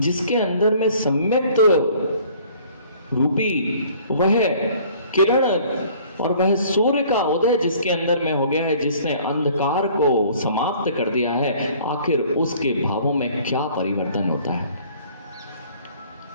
अंदर में सम्यक रूपी वह किरण और वह सूर्य का उदय जिसके अंदर में हो गया है, जिसने अंधकार को समाप्त कर दिया है, आखिर उसके भावों में क्या परिवर्तन होता है।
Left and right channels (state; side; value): inverted; both; correlation -0.54